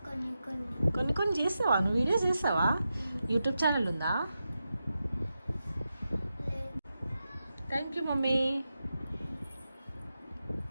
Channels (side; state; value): both; inverted; correlation -0.90